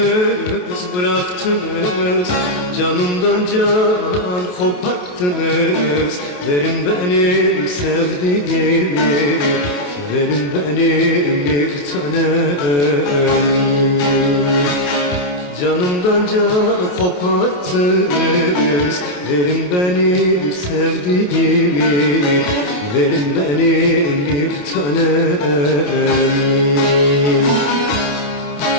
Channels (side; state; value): right; late; 28 ms